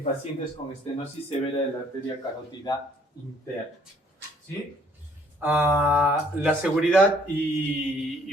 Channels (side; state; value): both; normal; correlation 0.62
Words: pacientes con estenosis severa de la arteria carótida interna, ¿sí? La seguridad